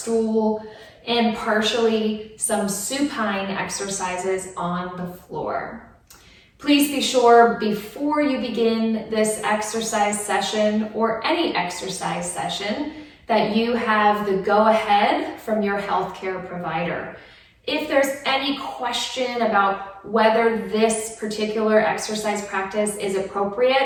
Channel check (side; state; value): both; identical; correlation 1.00